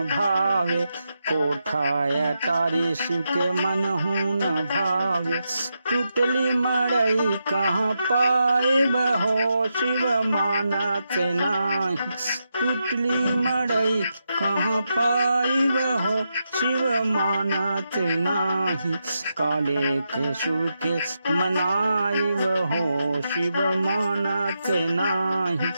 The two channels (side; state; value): both; inverted; correlation -0.85